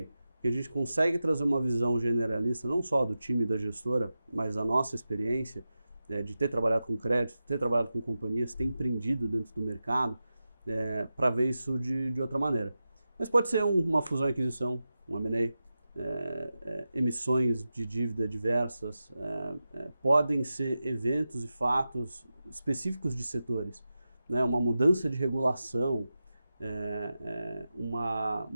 Porque a gente consegue trazer uma visão generalista, não só do time da gestora, mas da nossa experiência, de ter trabalhado com crédito, ter trabalhado com companhias, ter empreendido dentro do mercado, para ver isso de outra maneira. Mas pode ser uma fusão e aquisição, um M&A, emissões de dívida diversas, podem ser eventos e fatos específicos de setores, né? Uma mudança de regulação, uma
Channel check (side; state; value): both; inverted; correlation -0.92